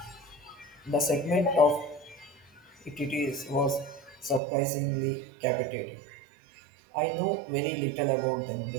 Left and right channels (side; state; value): left; drops out; at 4.4 s